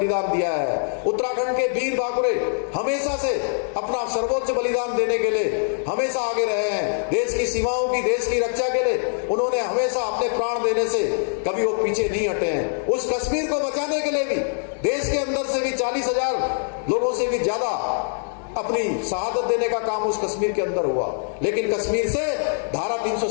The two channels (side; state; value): right; silent; 63 dB below the other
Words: दिया है। उत्तराखंड के वीर बाकुरे हमेशा से अपना सर्वोच्च बलिदान देने के लिए हमेशा आगे रहे हैं। देश की सीमाओं की, देश की रक्षा के लिए उन्होंने हमेशा अपने प्राण देने से कभी वो पीछे नहीं हटे हैं। उस कश्मीर को बचाने के लिए भी देश के अंदर से भी 40,000 लोगों से भी ज्यादा अपनी शहादत देने का काम उस कश्मीर के अंदर हुआ। लेकिन कश्मीर से धारा